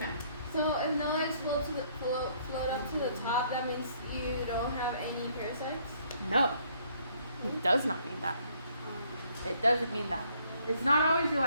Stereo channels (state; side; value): inverted; both; correlation -0.65